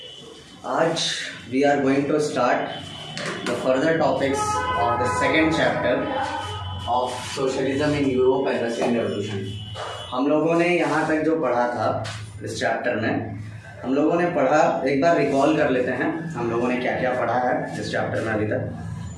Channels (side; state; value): both; identical; correlation 1.00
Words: आज we are going to start the further topics of the second chapter of socialism in Europe and Russian Revolution. हम लोगों ने यहाँ तक जो पढ़ा था इस चैप्टर में, हम लोगों ने पढ़ा, एक बार रिकॉल कर लेते हैं हम लोगों ने क्या क्या पढ़ा है इस चैप्टर में अभी तक.